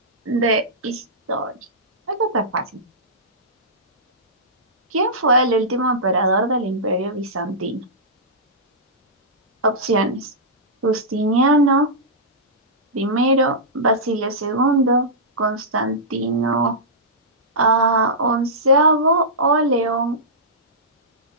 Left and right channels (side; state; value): both; normal; correlation -0.15